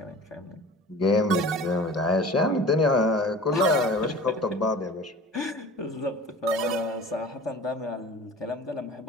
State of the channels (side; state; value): both; normal; correlation 0.41